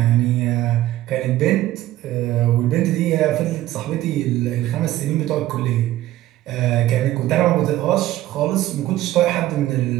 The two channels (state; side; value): quieter; left; 14.8 dB